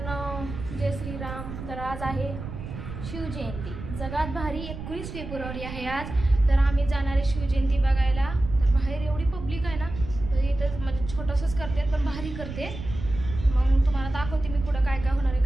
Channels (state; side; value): noise; right; rumble, 9 dB below the sound